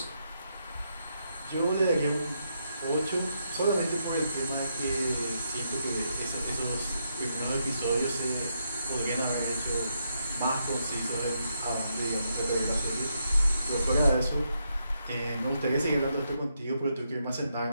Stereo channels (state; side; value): inverted; both; correlation -0.80